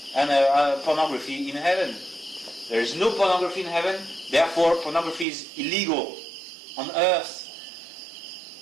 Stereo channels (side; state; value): left; drops out; at 5.2 s